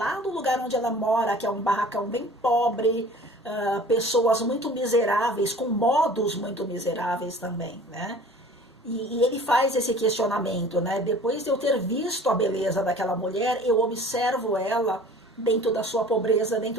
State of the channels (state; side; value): normal; both; correlation 0.46